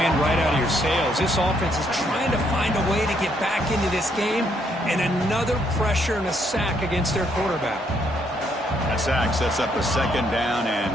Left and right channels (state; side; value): normal; both; correlation 0.72